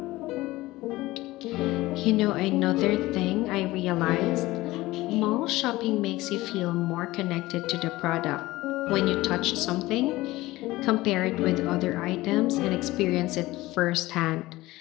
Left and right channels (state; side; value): quieter; right; 18.6 dB